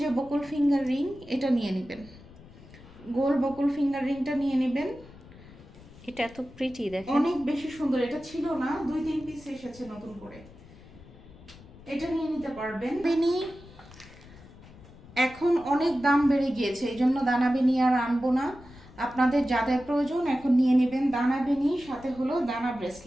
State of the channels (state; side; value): noise; left; rumble, 20 dB below the sound